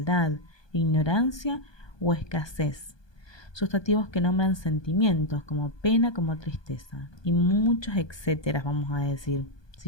ignorancia o escasez. Sustantivos que nombran sentimientos como pena, como tristeza y muchos etcétera, vamos a decir,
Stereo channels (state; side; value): late; right; 1.2 ms